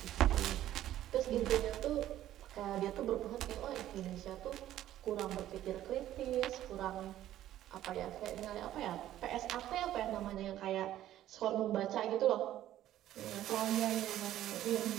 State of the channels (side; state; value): left; quieter; 12.9 dB